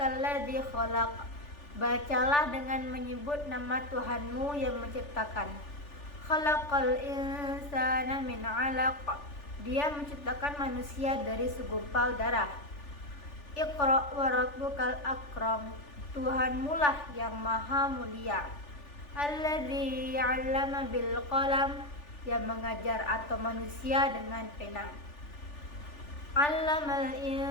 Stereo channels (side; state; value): right; late; 3.4 ms